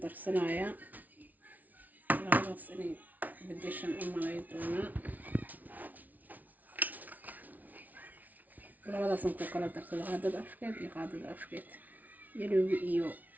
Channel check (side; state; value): left; late; 0.077 ms